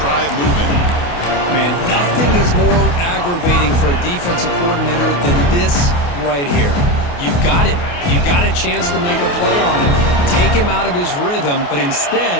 drive moving. Man, nothing is more aggravating for a defensive coordinator than this right here. You've got him. You got a chance to make a play on him, take him out of his rhythm, but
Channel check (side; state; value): right; late; 28 ms